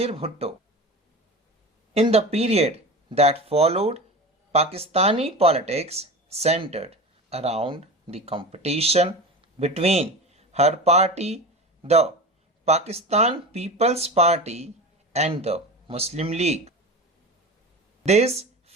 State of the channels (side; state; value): both; normal; correlation 0.30